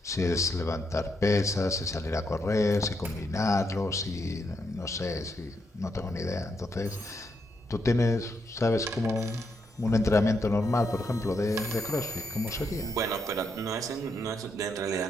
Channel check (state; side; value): normal; both; correlation 0.79